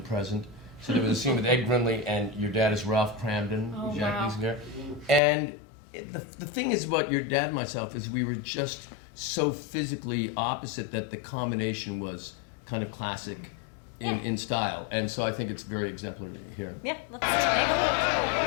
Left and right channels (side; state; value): right; drops out; at 5.2 s